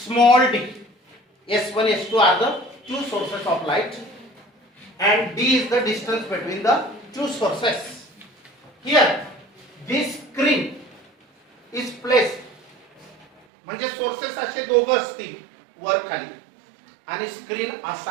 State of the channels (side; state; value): left; drops out; at 13.4 s